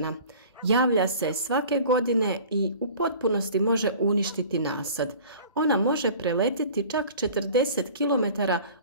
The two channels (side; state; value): both; inverted; correlation -0.45